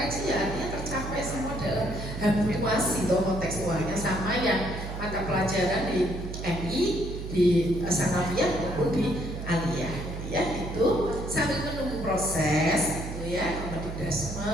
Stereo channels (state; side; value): noise; right; hum, 7 dB below the sound